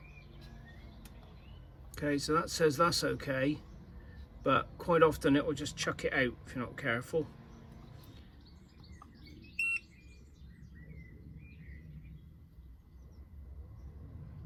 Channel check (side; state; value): both; identical; correlation 1.00